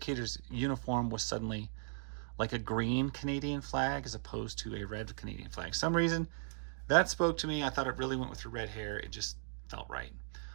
uniform was suddenly like a green Canadian flag as opposed to a red Canadian flag. Some reason that spoke to me. I thought it really went with her red hair. It just felt right.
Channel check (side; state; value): left; silent; digital silence